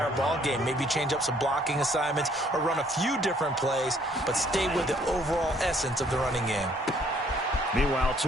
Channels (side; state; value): both; normal; correlation 0.63